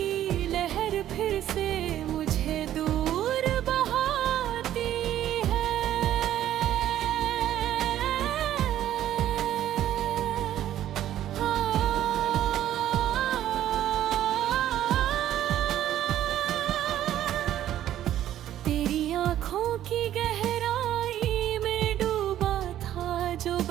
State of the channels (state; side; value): quieter; left; 12.1 dB